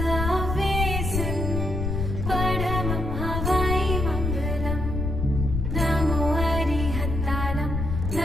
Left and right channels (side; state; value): left; noise; rumble, 2 dB below the sound